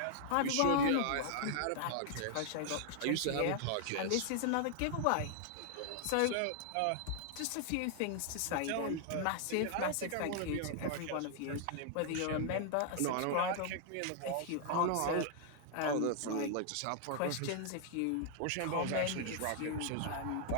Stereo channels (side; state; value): both; different; correlation 0.00